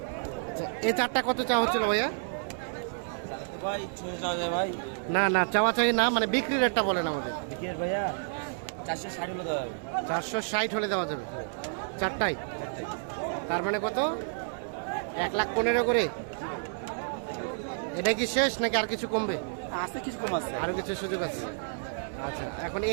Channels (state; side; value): silent; left; 58 dB below the other